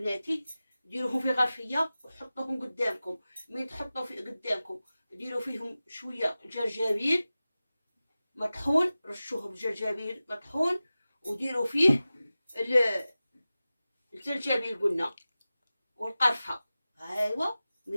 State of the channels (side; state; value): both; inverted; correlation -0.96